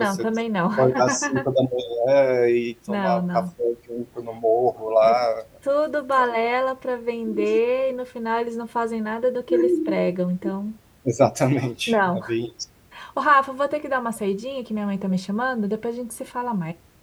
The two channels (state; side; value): identical; both; correlation 1.00